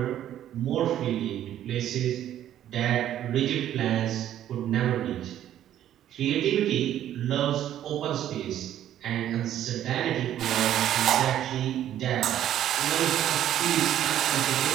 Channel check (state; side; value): quieter; left; 11.5 dB